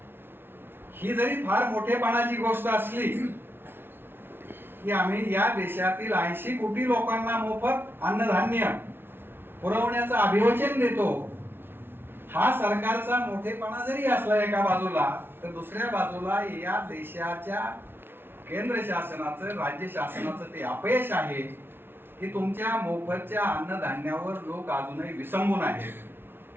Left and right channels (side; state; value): left; late; 0.11 ms